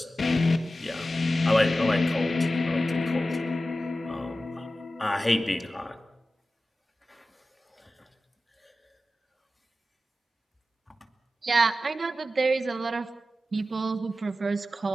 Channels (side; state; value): both; normal; correlation 0.93